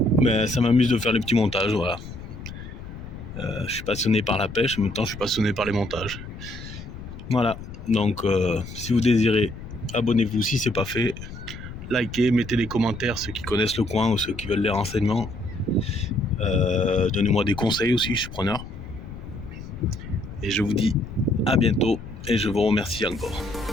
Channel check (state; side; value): noise; left; rumble, 12 dB below the sound